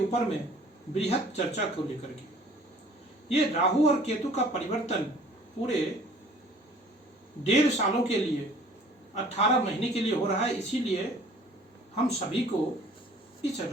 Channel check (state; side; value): normal; both; correlation 0.52